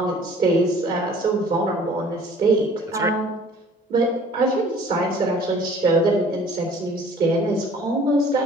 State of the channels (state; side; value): normal; both; correlation 0.52